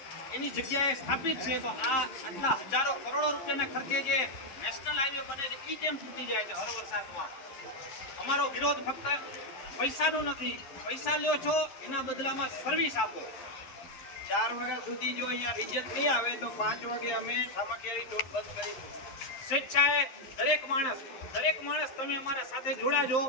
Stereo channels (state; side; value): late; right; 11 ms